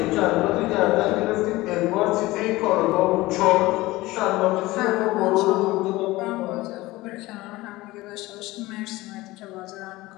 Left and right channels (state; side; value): quieter; right; 19.2 dB